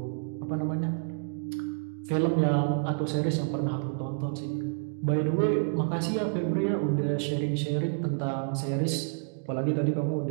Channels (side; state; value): left; silent; digital silence